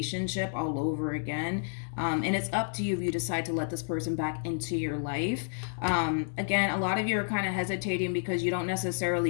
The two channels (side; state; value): right; silent; digital silence